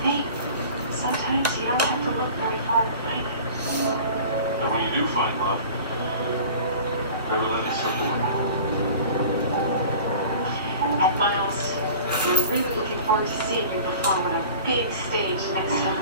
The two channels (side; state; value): both; inverted; correlation -0.41